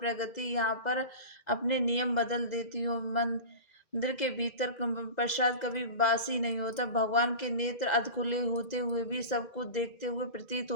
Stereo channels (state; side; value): late; right; 2.0 ms